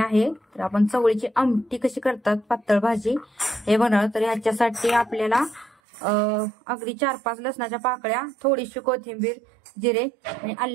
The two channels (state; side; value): drops out; left; at 5.8 s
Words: तर आपण चवळीची आमटी कशी करतात पातळ भाजी हे बनवणार। तर ह्याच्यासाठी आपल्याला अगदी 4-5 लसणाच्या पाकळ्या, थोडीशी कोथिंबीर, जिरे आणि